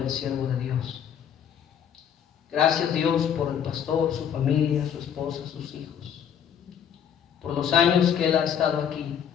el siervo de Dios. Gracias, Dios, por el pastor, su familia, su esposa, sus hijos, por los años que él ha estado aquí.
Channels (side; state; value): right; quieter; 8.6 dB